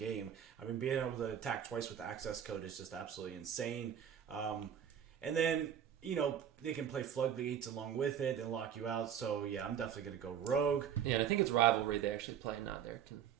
I mean, being able to attack twice with access code is just absolutely insane. And then, they can play floodgates along with it and lock you out. So, yeah, I'm definitely going to go rogue. Yeah, and I think it's Rivalry they actually play, not there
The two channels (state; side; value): quieter; left; 9.0 dB